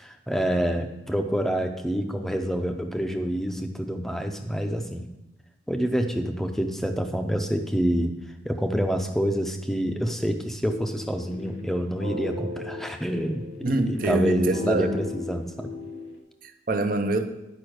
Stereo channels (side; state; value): both; normal; correlation 0.82